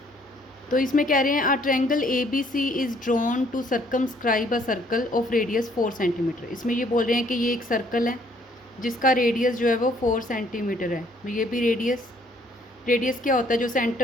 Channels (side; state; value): both; normal; correlation 0.64